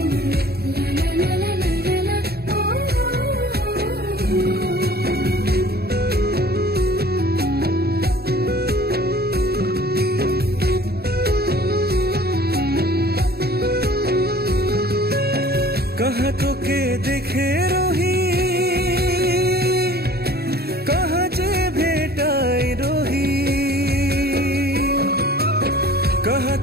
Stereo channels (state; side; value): late; left; 0.46 ms